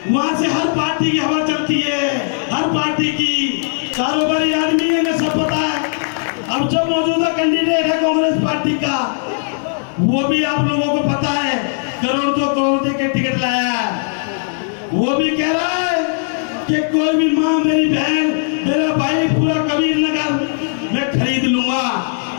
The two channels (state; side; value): silent; right; 65 dB below the other